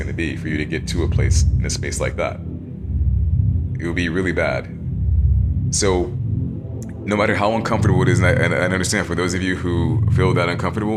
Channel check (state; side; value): identical; both; correlation 1.00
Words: to be for you to get to a place in a space like that. It will be really bad. So no matter how uncomfortable it is, and I understand for those of you who feel that